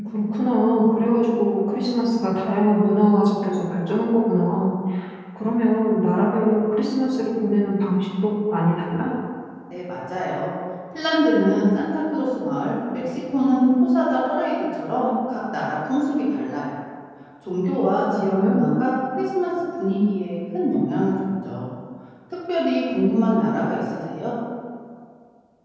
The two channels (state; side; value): identical; both; correlation 1.00